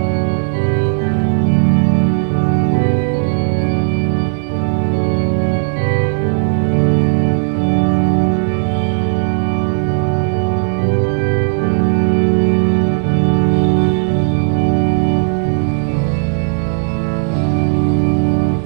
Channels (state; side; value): silent; left; digital silence